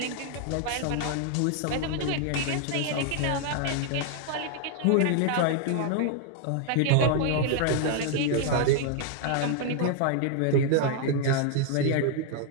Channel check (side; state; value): both; different; correlation 0.00